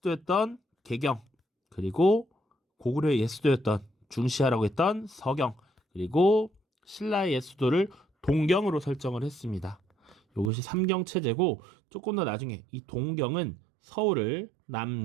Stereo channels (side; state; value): left; drops out; at 10.5 s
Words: 개경, 그리고 고구려의 옛 수도였던 중시하라고 했던 서경, 그리고 신라의 옛 수도를 동경으로 설정을 했습니다. 이것이 삼경체제고 조금 더 나중에 이 동경은 서울을